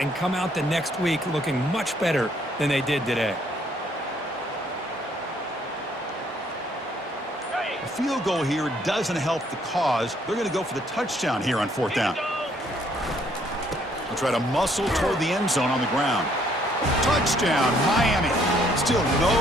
and come out the next week looking much better than they did today. A field goal here doesn't help the cause. They're going to go for the touchdown here on 4th down. They'll try to muscle toward the end zone on the ground. Touchdown, Miami. Still no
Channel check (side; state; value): both; normal; correlation 0.66